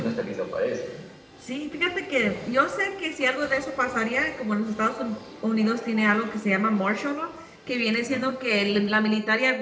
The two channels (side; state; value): both; identical; correlation 1.00